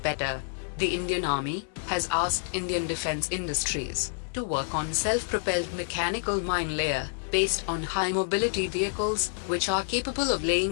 The Indian Army has asked Indian defense industries to work on self-propelled mechanical mine layer based on high-mobility vehicles which are capable of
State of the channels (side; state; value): right; silent; 56 dB below the other